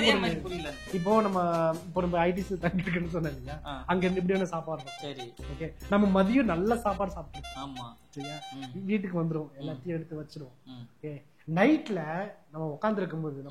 புரியல. இப்போ நம்ம ஐடிசி தங்கி இருக்குன்னு சொன்னேன் இல்லையா, அங்க இருந்து இப்படியான சாப்பாடு. சரி ஓகே, நம்ம மதியம் நல்ல சாப்பாடு சாப்பிடுவோம். ஆமா சரியா, வீட்டுக்கு வந்துருவோம், எல்லாத்தையும் எடுத்து வச்சிருவோம். ஓகே, நைட்ல நம்ம உட்கார்ந்து இருக்கும்போது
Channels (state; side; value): identical; both; correlation 1.00